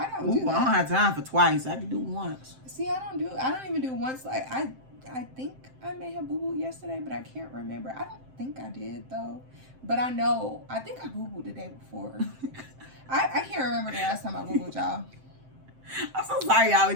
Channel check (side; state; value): left; late; 7.7 ms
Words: don't do that. I don't have time for twice. I can do once. See, I don't even do once. Like, I think I may have boo-booed yesterday, but I can't remember. I don't think I did though, but I think I boo-booed the day before. I can't remember the last time I boo-booed, y'all. I'm so sorry, y'all. We